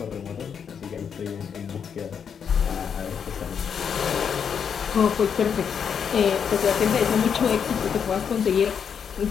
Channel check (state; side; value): quieter; right; 7.2 dB